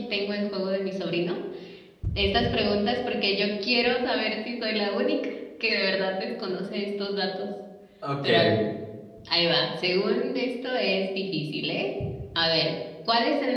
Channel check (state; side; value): identical; both; correlation 1.00